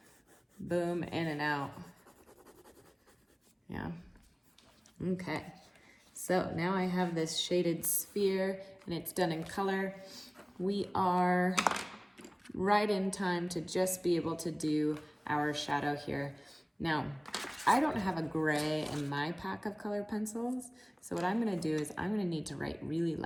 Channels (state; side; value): identical; both; correlation 1.00